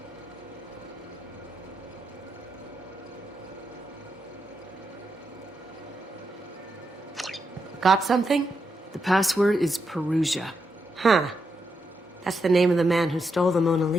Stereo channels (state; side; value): normal; both; correlation 0.83